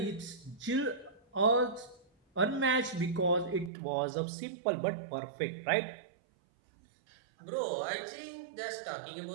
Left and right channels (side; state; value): left; drops out; at 3.7 s